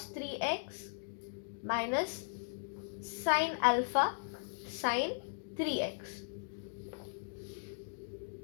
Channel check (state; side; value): silent; right; digital silence